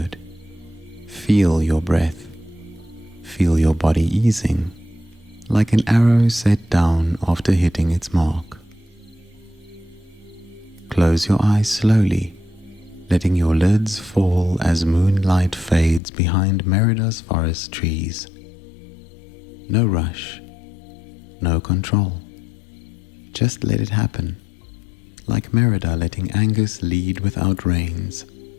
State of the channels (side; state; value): right; drops out; at 16.0 s